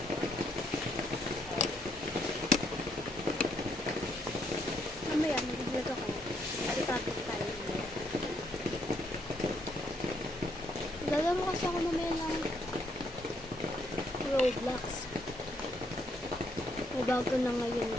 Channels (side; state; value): both; normal; correlation 0.73